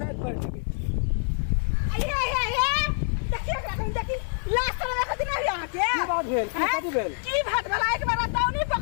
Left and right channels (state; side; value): silent; right; 61 dB below the other